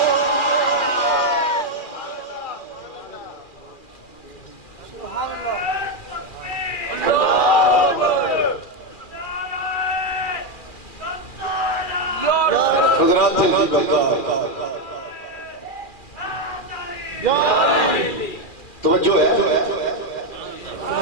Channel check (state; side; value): late; right; 2.4 ms